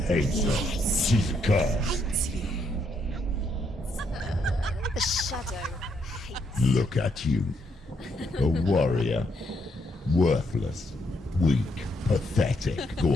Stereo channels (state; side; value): normal; both; correlation 0.75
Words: her. She's cursed. The shadow hates. Look at you. A warrior. Worthless. Weak. Pathetic.